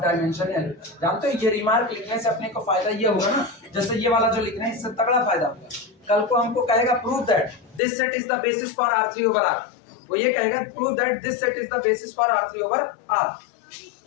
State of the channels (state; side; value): drops out; right; at 7.8 s